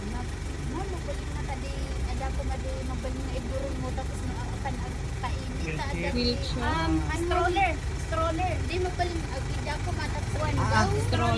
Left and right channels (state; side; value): identical; both; correlation 1.00